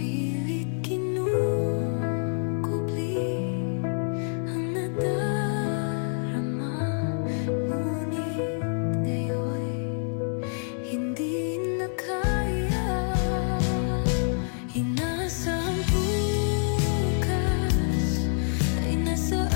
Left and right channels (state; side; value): silent; right; 60 dB below the other